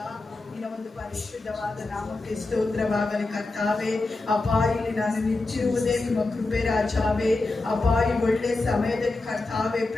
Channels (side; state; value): right; quieter; 3.3 dB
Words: ನಿನ್ನ ಒಂದು ಪರಿಶುದ್ಧವಾದ ನಾಮಕ್ಕೆ ಸ್ತೋತ್ರವಾಗಲಿ ಕರ್ತಾವೆ. ಅಪ್ಪ, ಇಲ್ಲಿ ನಾನು ನಿಂತಿರುವುದೇ ನಿಮ್ಮ ಕೃಪೆ ರಾಜಾವೆ. ಅಪ್ಪ, ಈ ಒಳ್ಳೆ ಸಮಯದಲ್ಲಿ ಕರ್ತಾವೆ